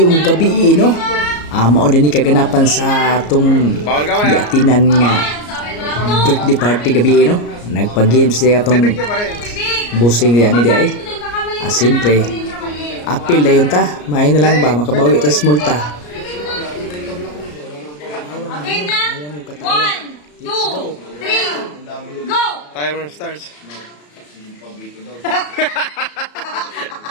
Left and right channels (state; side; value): late; right; 34 ms